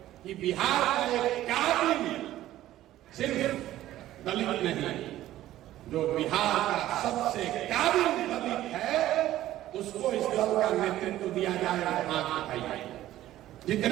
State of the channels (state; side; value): quieter; left; 14.1 dB